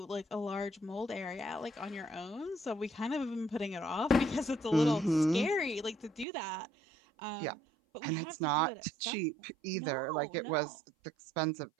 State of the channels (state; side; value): drops out; left; at 6.2 s